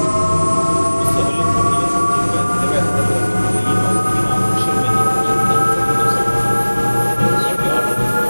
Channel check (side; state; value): both; inverted; correlation -1.00